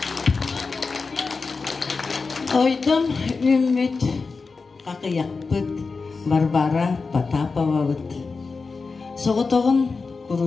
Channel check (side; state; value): right; quieter; 4.4 dB